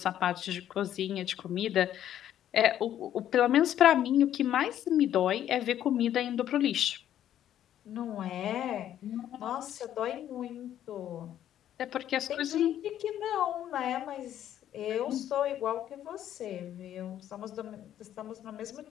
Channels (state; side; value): quieter; right; 11.2 dB